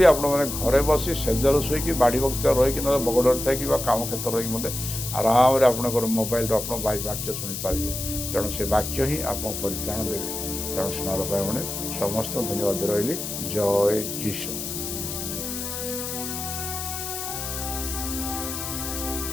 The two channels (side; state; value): left; noise; hiss, 5 dB below the sound